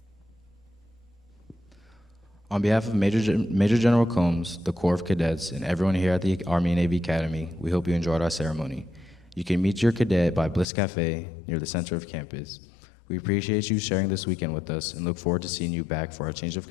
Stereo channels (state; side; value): drops out; right; at 10.7 s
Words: On behalf of Major General Combs, the Corps of Cadets, and everyone here at the Army and Navy Academy, we hope you enjoyed our ceremony. You can meet your cadet by Bliss Cafe near the center of campus. We appreciate you sharing this weekend with us and look forward to seeing you back for our Change of